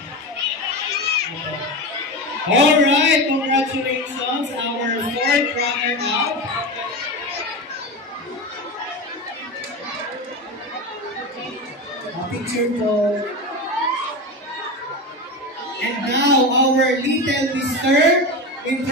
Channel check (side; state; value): both; normal; correlation 0.22